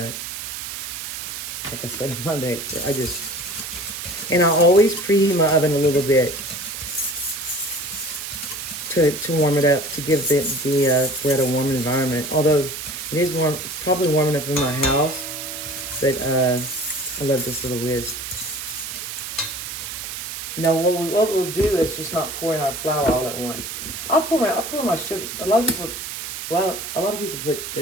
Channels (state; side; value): noise; right; hiss, 7 dB below the sound